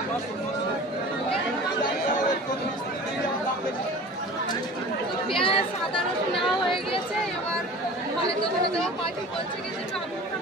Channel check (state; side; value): normal; both; correlation 0.40